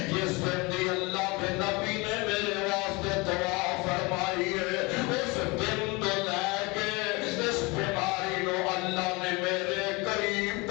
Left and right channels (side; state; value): right; quieter; 26.1 dB